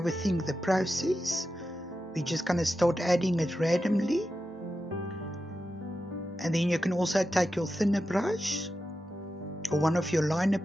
the process. We're just going to start adding it randomly. And then you can also take your thinner brush or one of your liner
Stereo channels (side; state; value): both; normal; correlation 0.90